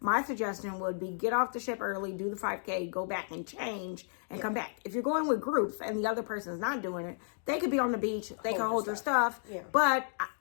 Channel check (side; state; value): right; silent; digital silence